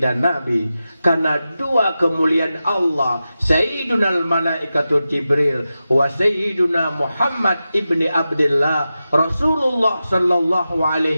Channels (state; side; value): inverted; both; correlation -0.92